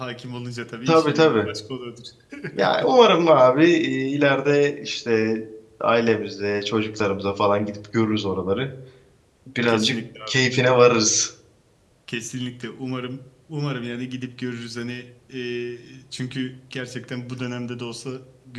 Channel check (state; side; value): identical; both; correlation 1.00